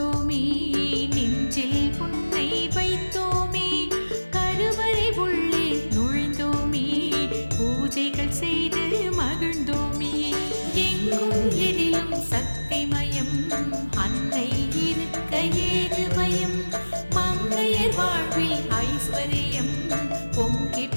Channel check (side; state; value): both; inverted; correlation -1.00